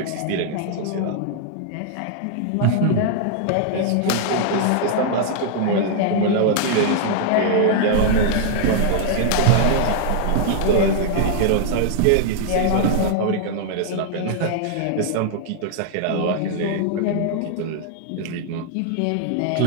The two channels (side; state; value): both; different; correlation -0.01